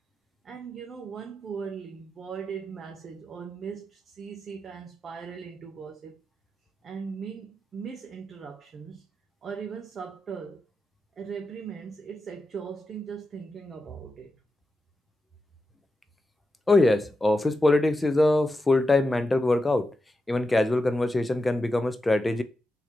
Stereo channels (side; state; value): both; normal; correlation 0.89